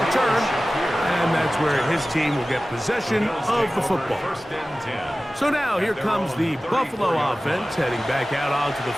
return. And that's where his team will get possession of the football. So now here comes the Buffalo offense heading back out onto the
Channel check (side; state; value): both; normal; correlation 0.96